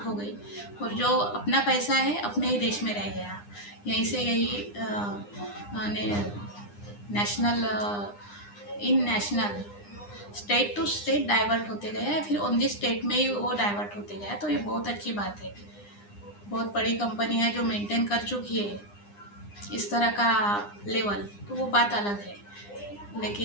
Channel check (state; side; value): late; right; 9.8 ms